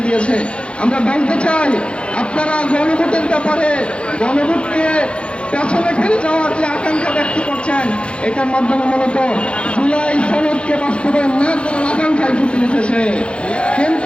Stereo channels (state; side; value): late; right; 0.058 ms